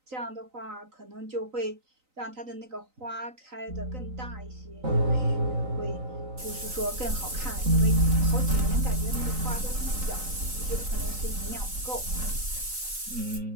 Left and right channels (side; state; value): left; late; 3.9 ms